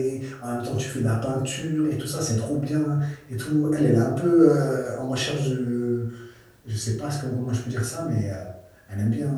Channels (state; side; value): identical; both; correlation 1.00